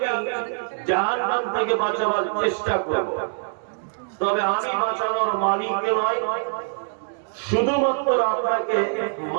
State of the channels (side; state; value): left; silent; digital silence